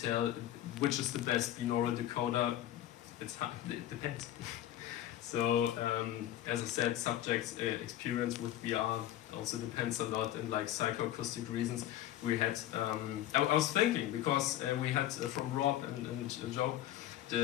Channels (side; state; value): right; quieter; 12.9 dB